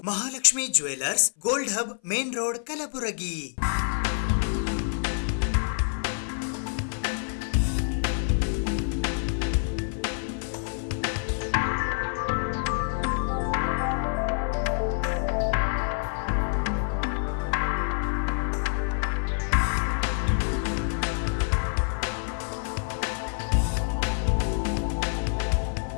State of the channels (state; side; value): silent; right; 56 dB below the other